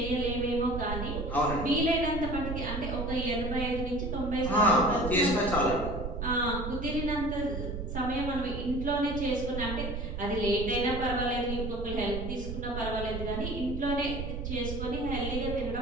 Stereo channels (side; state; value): right; noise; rumble, 5 dB below the sound